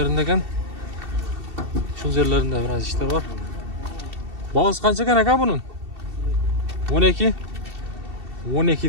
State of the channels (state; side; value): late; left; 2.7 ms